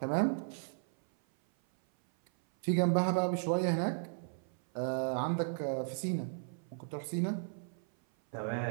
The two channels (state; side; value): silent; left; 54 dB below the other